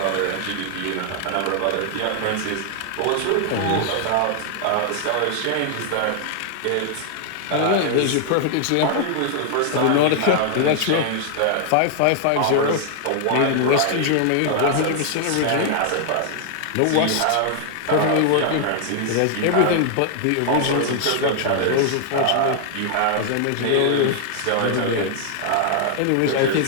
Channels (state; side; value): different; both; correlation 0.00